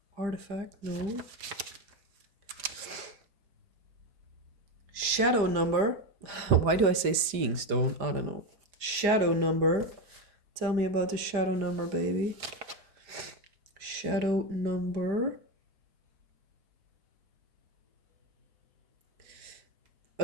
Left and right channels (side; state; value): left; late; 5.0 ms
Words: Artifact? No. Shadow number? Why do I say seeing stone? I don't know. Shadow number. Tell me about the shadow number, baby. Shadow number.